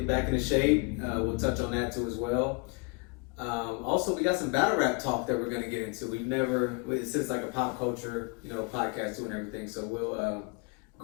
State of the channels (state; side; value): quieter; right; 30.7 dB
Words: back into shape. We'll touch on that too as well. Also, we got some battle rap talk that we're going to get into. It's just like a pop culture, podcast too and everything. So we'll,